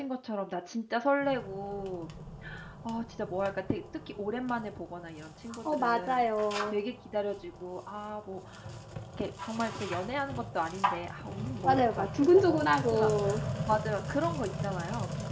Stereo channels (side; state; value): both; identical; correlation 1.00